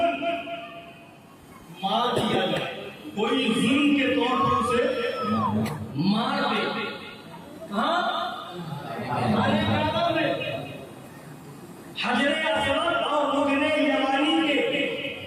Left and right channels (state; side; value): identical; both; correlation 1.00